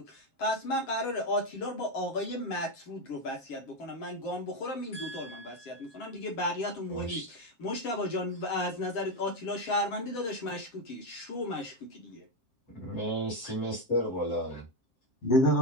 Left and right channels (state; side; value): late; right; 7.5 ms